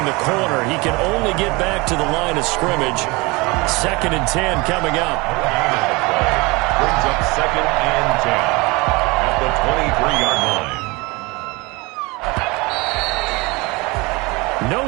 the corner. He can only get back to the line of scrimmage. 2nd and 10 coming up. Brings up 2nd and 10 at the 23-yard line. No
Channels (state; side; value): quieter; left; 25.0 dB